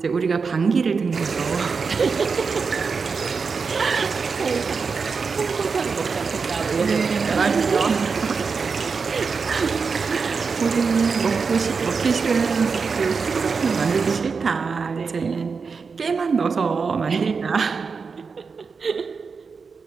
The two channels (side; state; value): left; quieter; 5.1 dB